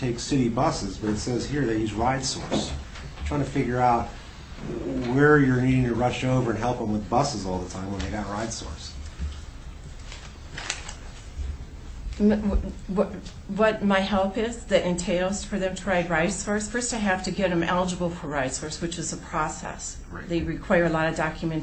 take city buses, but it says here they use RideSource. I'm trying to figure out where you're needing to rush over and help them with buses all the time when they got RideSource. What my help is that entails for them to ride RideSource, first I have to get them eligible for RideSource, which is a process. Right. They require a lot of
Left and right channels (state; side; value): identical; both; correlation 1.00